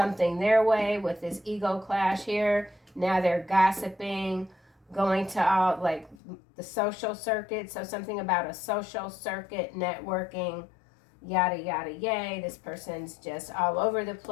their way with this ego clash here. Now they're gossiping, going to all like the social circuit. So something about a social circuit, networking, yada yada yay. This person's just all over the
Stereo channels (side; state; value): right; drops out; at 6.2 s